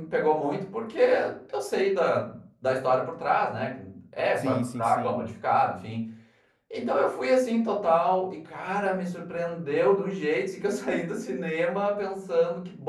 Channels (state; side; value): identical; both; correlation 1.00